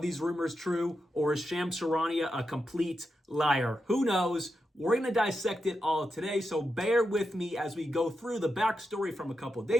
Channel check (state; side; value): normal; both; correlation 0.87